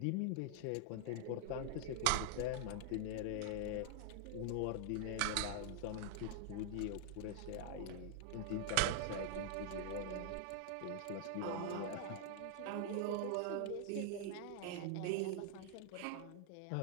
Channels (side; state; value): both; different; correlation -0.01